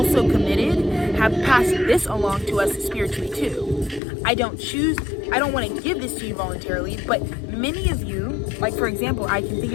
committed have passed this along to us spiritually too. I don't want to give this to you voluntarily, but many of you, like for example, I can think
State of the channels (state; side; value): drops out; right; at 4.0 s